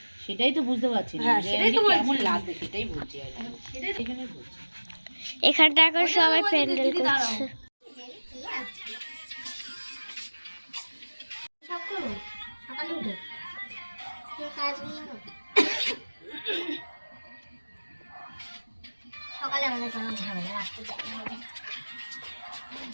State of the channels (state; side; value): inverted; both; correlation -1.00